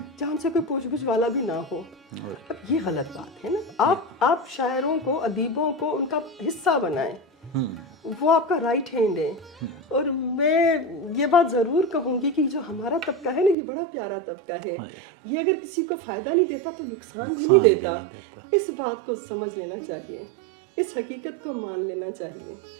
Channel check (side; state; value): left; drops out; at 13.6 s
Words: سے کوئی پوچھ گچھ والا بھی نہ ہو. اب یہ غلط بات ہے نا. آپ شاعروں کو, ادیبوں کو ان کا حصہ بنائیں, وہ آپ کا رائٹ ہینڈ ہے. اور میں یہ بات ضرور کہوں گی کہ جو ہمارا طبقہ ہے نا, یہ بڑا پیارا طبقہ ہے. یہ اگر کسی کو فائدہ نہیں دیتا تو نقصان بھی نہیں دیتا. اس بات کو سمجھ لینا چاہیے, اس حقیقت کو مان لینا چاہیے.